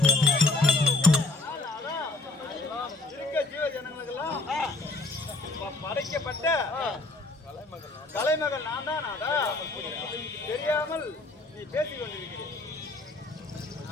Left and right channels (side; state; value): right; quieter; 3.1 dB